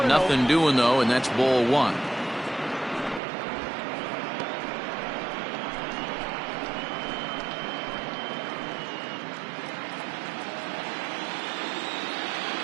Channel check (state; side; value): drops out; left; at 3.2 s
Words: nothing doing though, and that's ball 1.